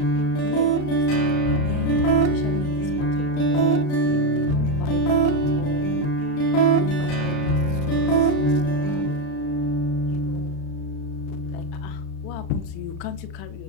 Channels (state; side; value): late; right; 35 ms